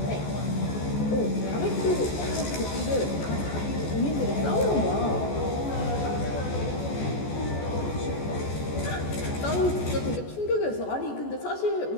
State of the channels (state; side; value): late; right; 14 ms